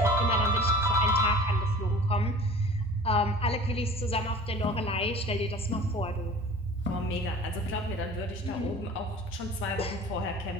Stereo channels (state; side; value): normal; both; correlation 0.43